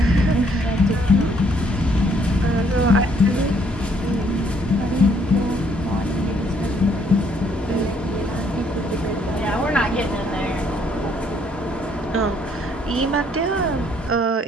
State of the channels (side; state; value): both; normal; correlation 0.67